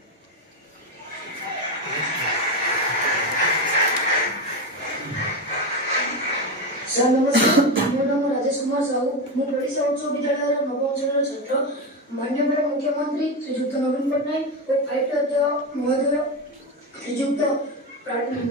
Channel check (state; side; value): normal; both; correlation 0.15